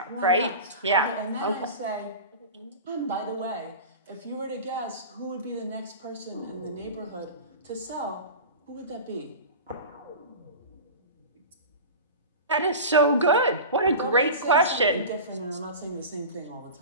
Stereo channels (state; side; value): inverted; both; correlation -0.31